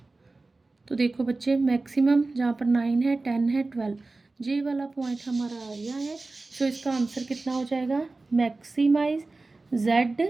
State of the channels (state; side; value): quieter; left; 3.4 dB